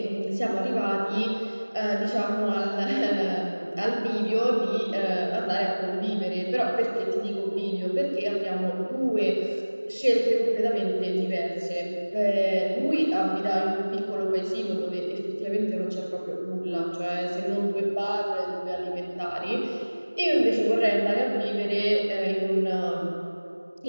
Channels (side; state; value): both; inverted; correlation -1.00